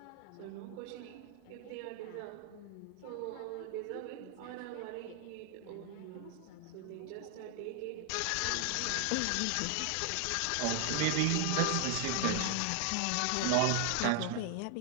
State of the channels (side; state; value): both; different; correlation 0.00